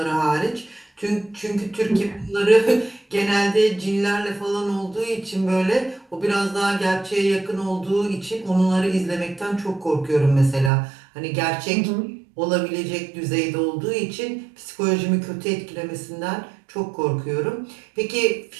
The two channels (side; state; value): left; drops out; at 10.7 s